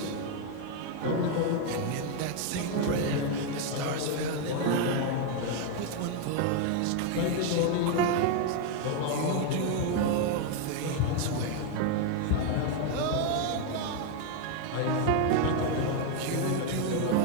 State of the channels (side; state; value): both; different; correlation 0.01